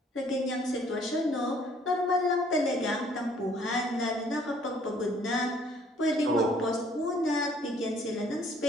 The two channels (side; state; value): both; normal; correlation 0.60